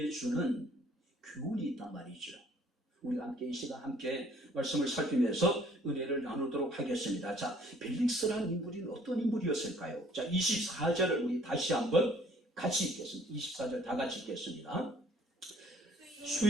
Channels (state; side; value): normal; both; correlation 0.58